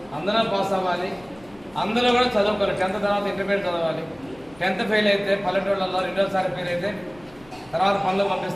అందరూ పాస్ అవ్వాలి, అందరూ కూడా చదువుకోవాలి. 10th తర్వాత ఇంటర్మీడియట్ చదవాలి. 10th ఫెయిల్ అయితే పల్లెటూళ్ళలో 2వసారి ఫెయిల్ అయితే తర్వాత పనులు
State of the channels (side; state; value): left; noise; rumble, 26 dB below the sound